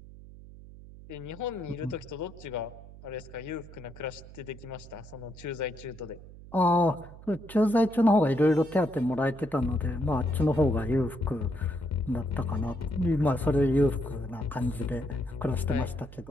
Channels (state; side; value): noise; right; hum, 17 dB below the sound